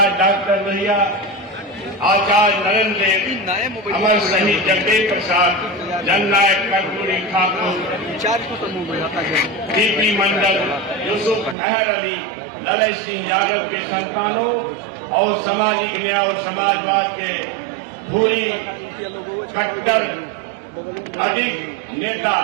डॉक्टर लोहिया, आचार्य नरेंद्र देव, अमर शहीद जगदेव प्रसाद, जननायक कर्पूरी ठाकुर, डीपी मंडल, यूसुफ मेहर अली, ललन सिंह यादव के संतानों और सामाजिक न्याय और समाजवाद के पूरी कट्टर अधिक नेता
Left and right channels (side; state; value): left; drops out; at 11.6 s